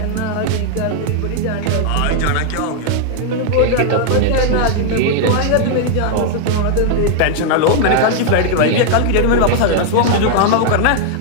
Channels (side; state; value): both; different; correlation 0.00